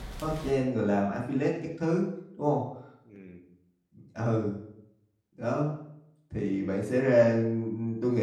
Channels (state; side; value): identical; both; correlation 1.00